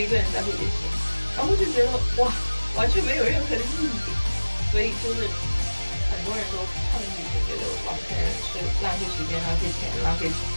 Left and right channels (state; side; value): inverted; both; correlation -1.00